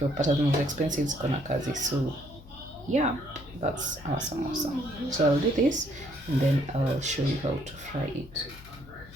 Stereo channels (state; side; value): noise; left; hum, 20 dB below the sound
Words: zinauzwa expensive ziko na kazi. So yeah, that's our samosa. So I'll do this, and then I'll show you how to fry it.